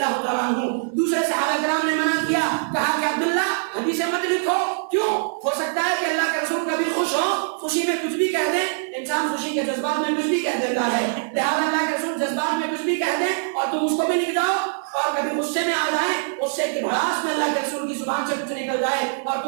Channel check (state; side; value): silent; left; 63 dB below the other